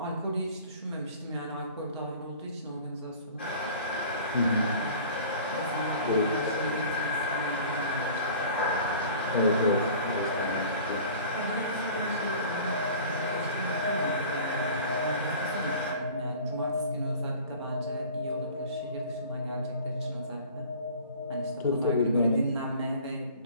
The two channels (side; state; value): both; inverted; correlation -0.44